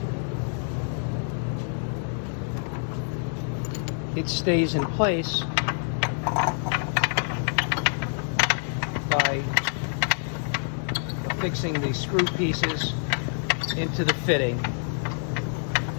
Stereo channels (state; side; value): silent; right; 60 dB below the other